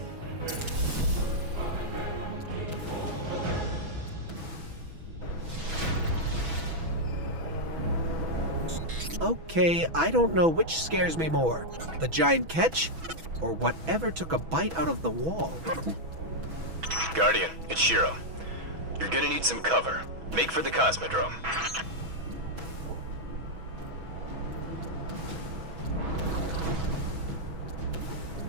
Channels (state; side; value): late; left; 6.1 ms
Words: Okay, I don't know which scares me more, the giant ketch, or whatever took a bite out of the wall. Guardian, it's Shiro. You're gonna need some cover. Make for the Cosmodrome.